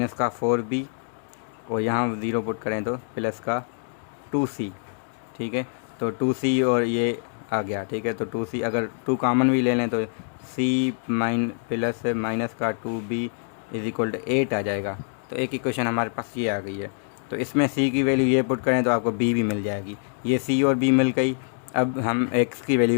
का 4b, और यहाँ 0 पुट करें तो प्लस का 2c। ठीक है, तो 2c और ये आ गया। ठीक है, तो 2c अगर 2 कॉमन भी ले लें तो c प्लस माइनस का 2b इज इक्वल टू 8 आ जाएगा। तो एक इक्वेशन हमारे पास ये आ गई है। तो इसमें c की वैल्यू ये पुट करें तो आपको b भी मिल जाएगी, ये c और b मिल गई। अब हम x की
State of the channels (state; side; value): silent; right; digital silence